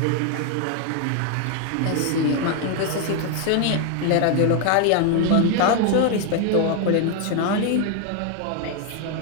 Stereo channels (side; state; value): both; different; correlation 0.01